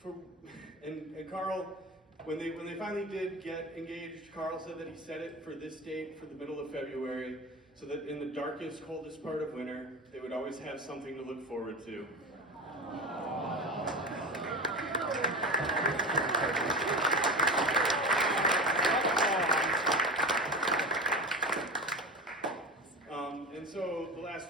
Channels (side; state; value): both; normal; correlation 0.27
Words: Carl, when they finally did get engaged, Carl said that he set it for this date, for the middle of February, so that in the darkest, coldest part of winter, they would always have something to look forward to. And so the last